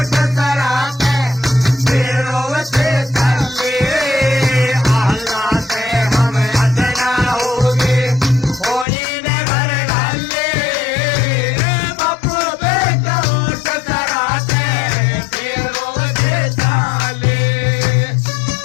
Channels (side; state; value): right; drops out; at 8.8 s